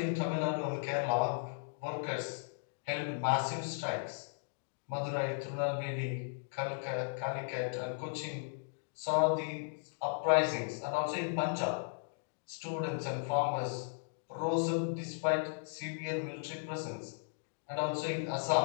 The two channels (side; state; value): right; silent; digital silence